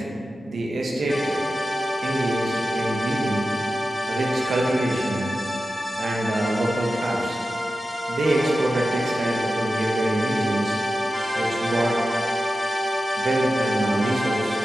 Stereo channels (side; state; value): both; normal; correlation 0.93